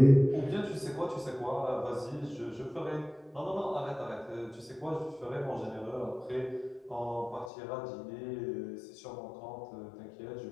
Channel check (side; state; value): right; drops out; at 7.5 s